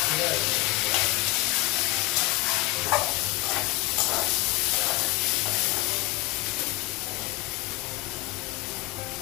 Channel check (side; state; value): right; quieter; 19.7 dB